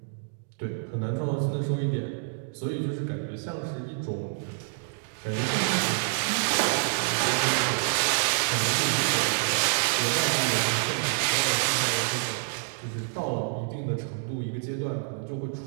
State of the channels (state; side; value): silent; left; digital silence